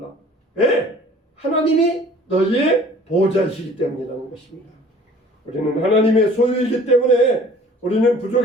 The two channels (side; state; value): both; normal; correlation 0.50